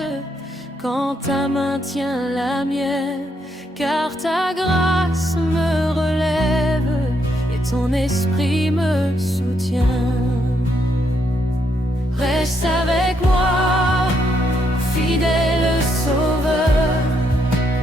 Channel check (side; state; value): both; normal; correlation 0.76